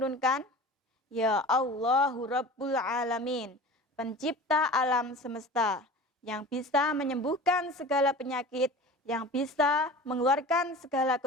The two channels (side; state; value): both; normal; correlation 0.38